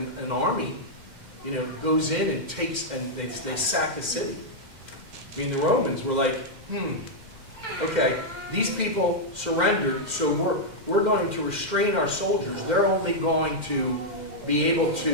an army, you know, goes in and takes, and they sack a city. I mean, the Romans were like, okay, these people surrendered, so we're going to restrain our soldiers. They're only going to be able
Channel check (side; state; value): left; late; 2.0 ms